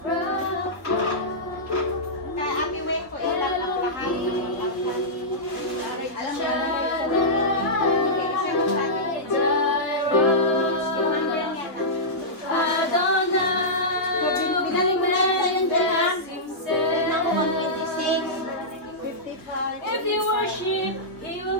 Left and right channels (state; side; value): late; right; 3.1 ms